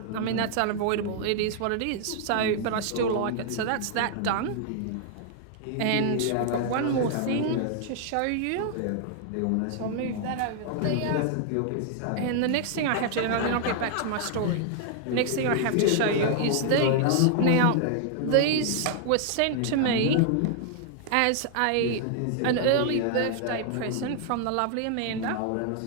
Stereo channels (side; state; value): both; different; correlation 0.00